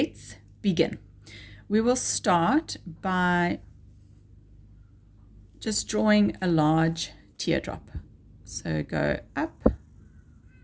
begin. We will start by just drawing a large teardrop. So go up,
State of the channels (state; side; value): identical; both; correlation 1.00